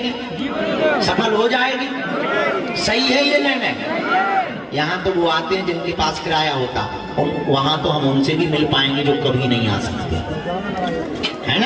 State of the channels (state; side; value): identical; both; correlation 1.00